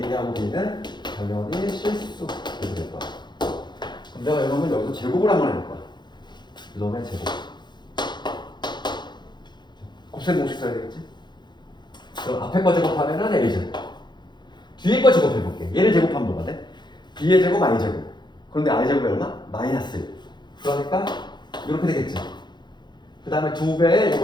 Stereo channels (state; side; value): late; right; 0.21 ms